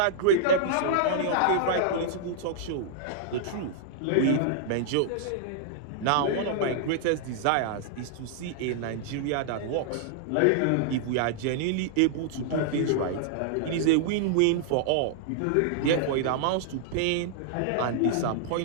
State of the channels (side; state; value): both; different; correlation -0.01